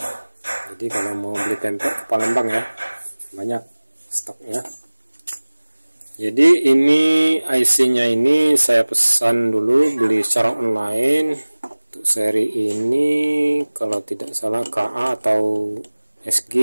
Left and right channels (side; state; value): both; inverted; correlation -1.00